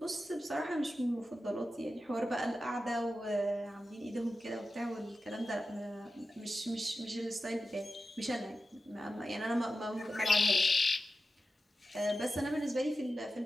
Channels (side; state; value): both; normal; correlation 0.92